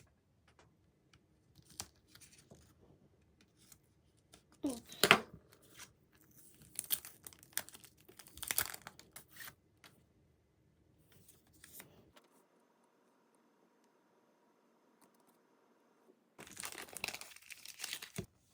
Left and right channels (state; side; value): identical; both; correlation 1.00